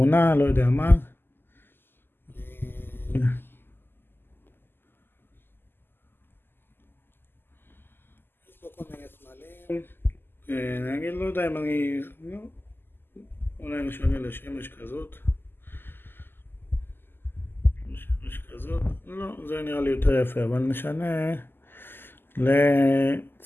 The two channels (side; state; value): right; late; 0.099 ms